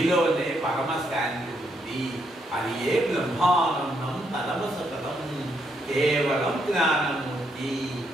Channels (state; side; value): normal; both; correlation 0.76